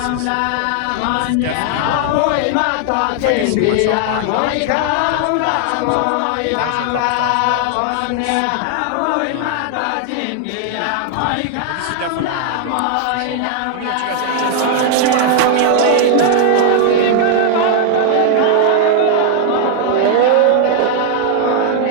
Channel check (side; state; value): both; different; correlation 0.00